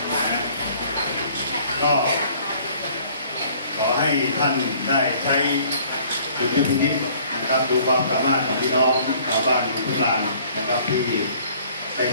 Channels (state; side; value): inverted; both; correlation -0.56